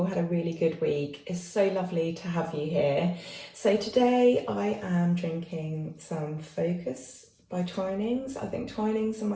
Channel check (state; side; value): identical; both; correlation 1.00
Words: had a really good week. It's so lovely to have you here. So today I am drinking some Focus by Twinings. I think Twinings are